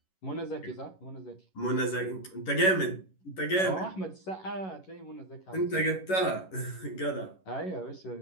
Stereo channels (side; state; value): right; late; 11 ms